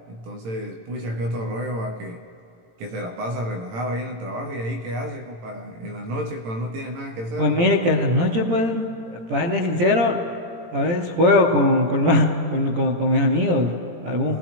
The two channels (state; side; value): late; left; 18 ms